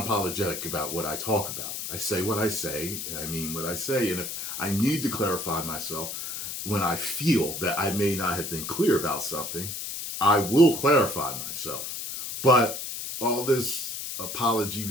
about what I talk about. I say what I say, and I mean what I say. And if I need to clarify myself when I feel that I may not have been clear about something, I will clarify myself. But all this apology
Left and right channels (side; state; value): left; noise; hiss, 6 dB below the sound